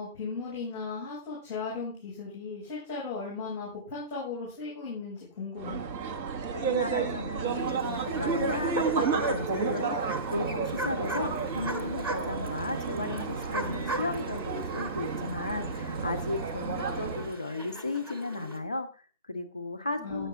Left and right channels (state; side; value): inverted; both; correlation -0.33